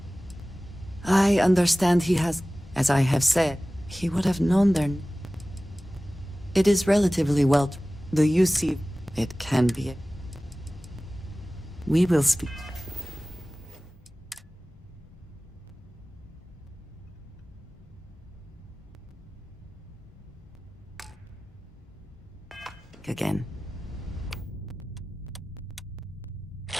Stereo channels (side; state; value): both; normal; correlation 0.97